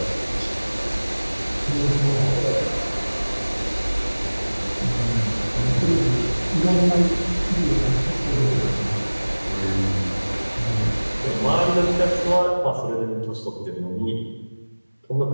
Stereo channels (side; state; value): both; inverted; correlation -1.00